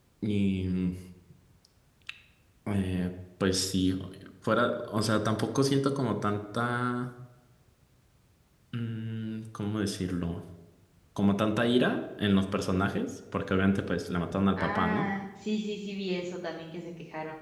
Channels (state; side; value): identical; both; correlation 1.00